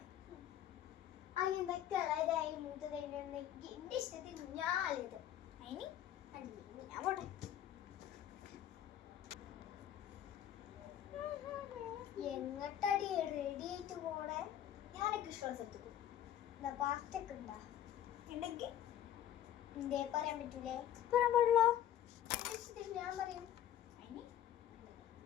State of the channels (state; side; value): quieter; right; 11.2 dB